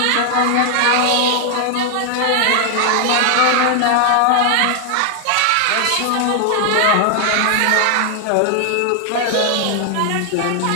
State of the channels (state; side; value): different; both; correlation 0.00